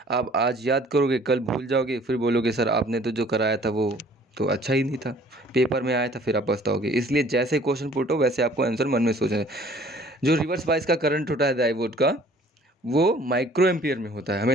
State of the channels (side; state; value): both; normal; correlation 0.54